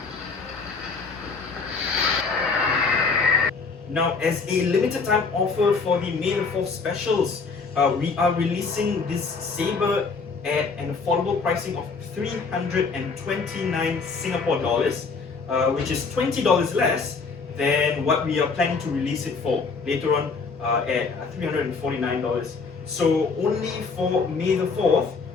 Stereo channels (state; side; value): quieter; right; 4.7 dB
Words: Now, as a limited time offer for the May the 4th specials, we are releasing this saber at an affordable pricing of 329 Singapore dollars, which is $20 less than what we are planning to release it for later on at $349. So only for May the 4th,